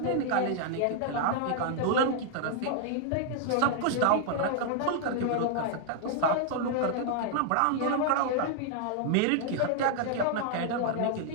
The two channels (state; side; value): different; both; correlation 0.00